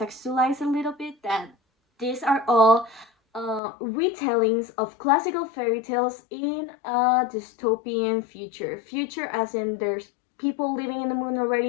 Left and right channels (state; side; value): drops out; right; at 3.6 s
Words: a little bit that these are all retellings of classical fairy tales in a dystopian future. Future, as in there's people living in the moon